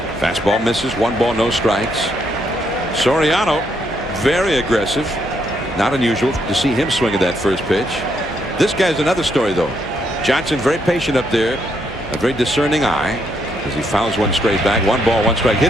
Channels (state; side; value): normal; both; correlation 0.75